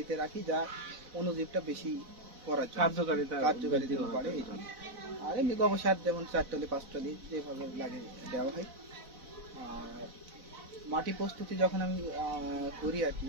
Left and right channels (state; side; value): late; left; 4.0 ms